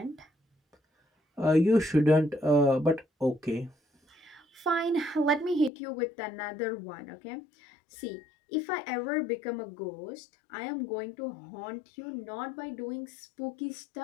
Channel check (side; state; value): right; drops out; at 5.7 s